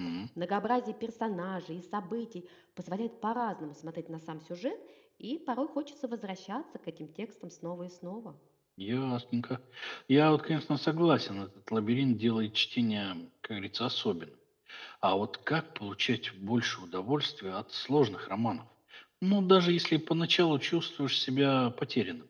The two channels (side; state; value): both; identical; correlation 1.00